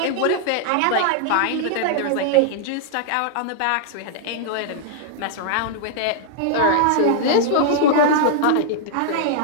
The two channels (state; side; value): different; both; correlation -0.01